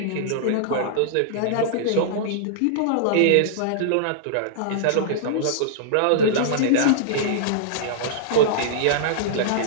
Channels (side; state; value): both; different; correlation -0.01